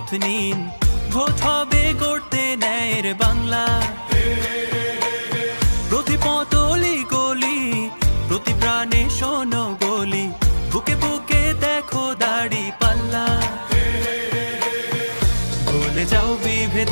নিন, ভোট হবে গড়তে ন্যায়ের বাংলা। প্রতি পতলি গলি, প্রতি প্রাণে শোনো গলি, বুকে বুকে দেখো দাড়ি পাল্লা। ভুলে যাও বিভেদ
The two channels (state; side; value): inverted; both; correlation -1.00